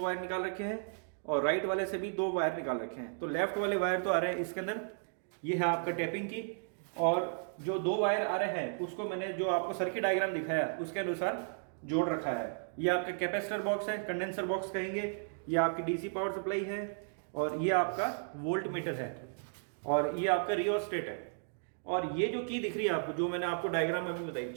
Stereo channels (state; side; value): silent; left; digital silence